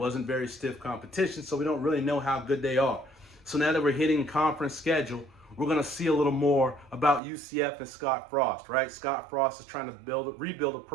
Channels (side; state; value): left; drops out; at 7.2 s